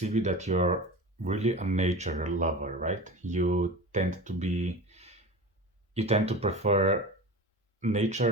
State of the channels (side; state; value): both; normal; correlation 0.31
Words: you that you're really a nature lover, right? You tend to prefer